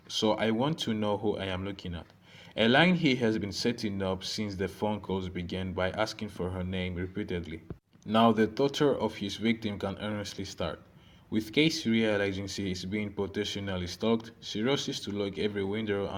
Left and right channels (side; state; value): both; identical; correlation 1.00